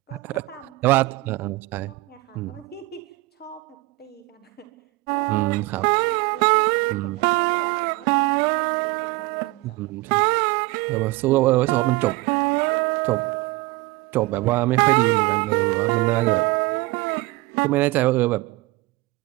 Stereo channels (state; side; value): quieter; left; 20.9 dB